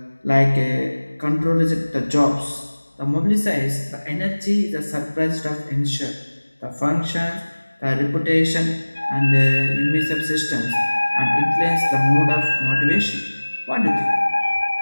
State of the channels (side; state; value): both; inverted; correlation -1.00